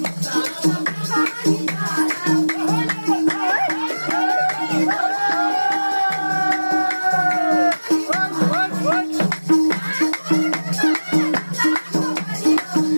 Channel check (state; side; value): inverted; both; correlation -1.00